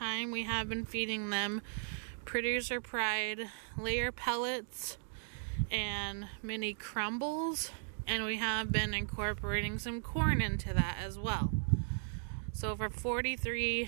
we have been feeding them Producer Pride layer pellets and mini crumbles, and we have been incorporating some corn into that as well. So for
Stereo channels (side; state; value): left; silent; digital silence